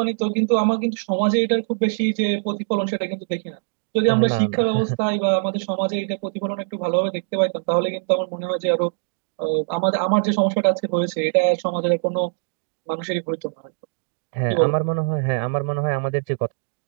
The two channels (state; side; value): silent; left; digital silence